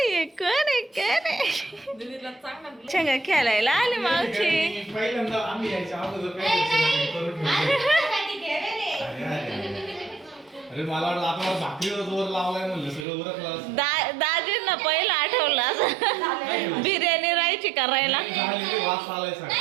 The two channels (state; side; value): drops out; left; at 13.1 s